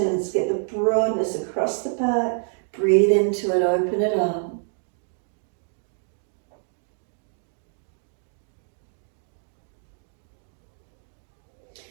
Get the broadness across the back, breathe into it, open it up.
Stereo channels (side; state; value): left; silent; 60 dB below the other